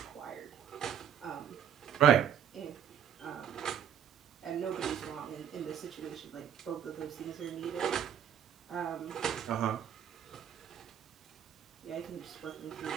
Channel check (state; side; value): quieter; left; 9.0 dB